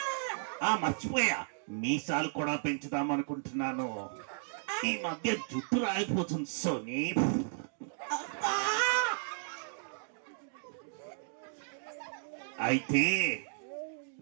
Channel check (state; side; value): silent; left; digital silence